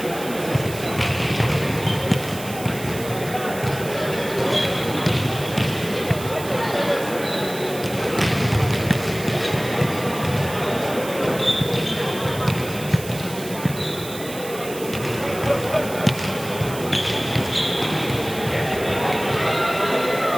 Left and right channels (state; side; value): noise; right; hiss, 13 dB below the sound